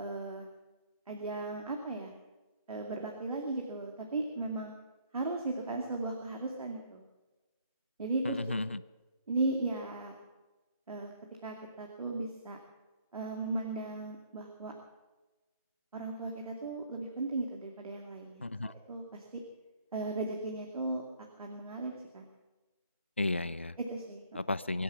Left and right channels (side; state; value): both; inverted; correlation -0.64